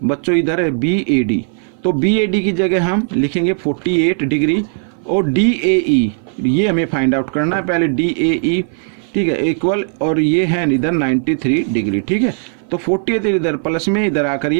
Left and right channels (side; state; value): left; silent; 56 dB below the other